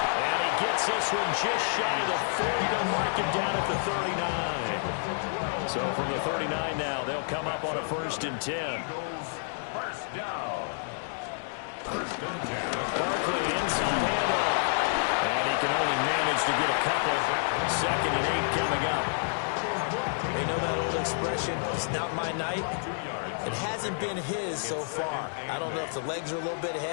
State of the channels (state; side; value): silent; right; digital silence